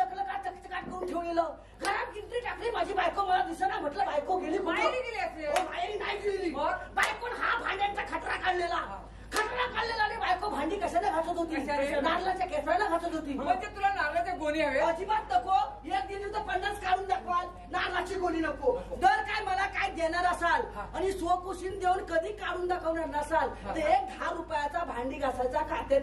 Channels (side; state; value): both; identical; correlation 1.00